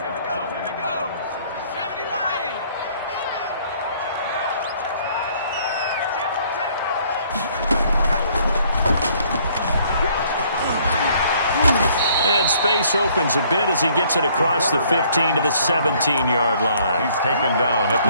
Space opens a bit as he gets it across the 15 to the 17-yard line. He's taken down at the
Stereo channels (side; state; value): both; inverted; correlation -0.62